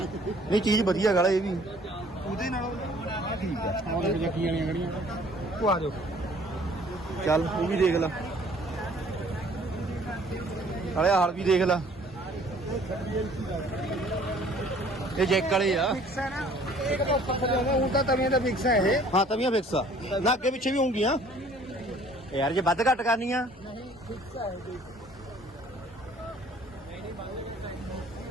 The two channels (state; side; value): normal; both; correlation 0.55